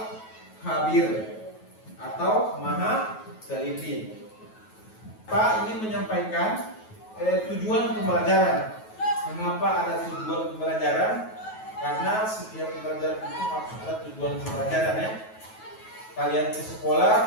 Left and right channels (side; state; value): right; late; 9.3 ms